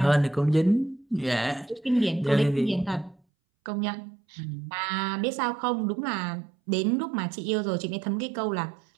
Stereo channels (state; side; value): drops out; left; at 3.2 s